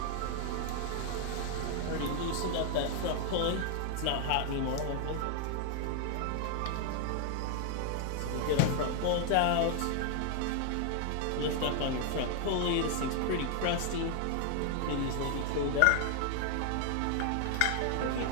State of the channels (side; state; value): both; different; correlation 0.00